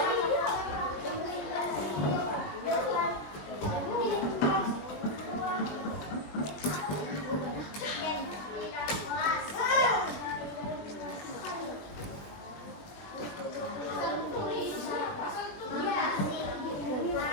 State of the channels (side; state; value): right; late; 20 ms